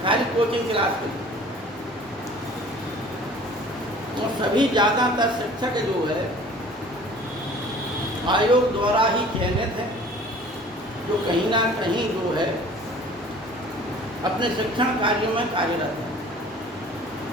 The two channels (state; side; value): normal; both; correlation 0.48